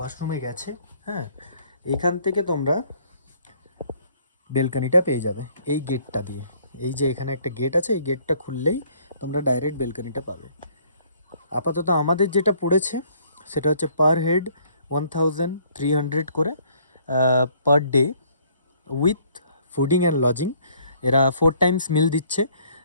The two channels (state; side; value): inverted; both; correlation -0.61